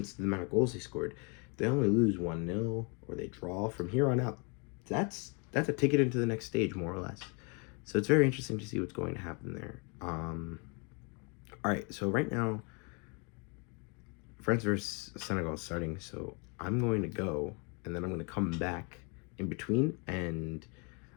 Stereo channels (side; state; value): right; quieter; 33.8 dB